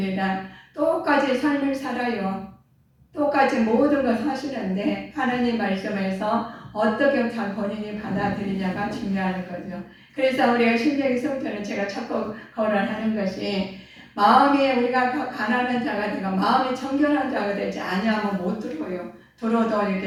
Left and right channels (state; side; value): identical; both; correlation 1.00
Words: 똑같이 삶을 살아요. 똑같이 모든 걸 사시는데 하나님 말씀에서 어떻게 잘 본인이 받아들이냐가 중요한 거죠. 그래서 우리가 신명기 성전을 제가 자꾸 거론하는 것이 마음이 우리가 가난한 자가 되고 마음이 정결한 자가 되지 아니하면 못 들어요. 들어도